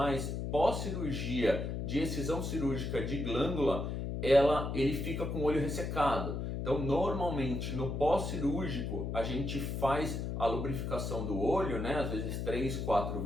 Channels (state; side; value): noise; left; hum, 3 dB below the sound